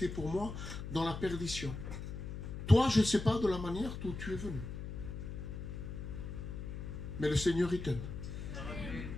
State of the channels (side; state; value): left; noise; hum, 7 dB below the sound